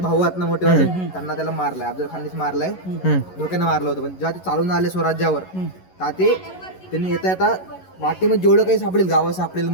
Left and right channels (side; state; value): right; late; 11 ms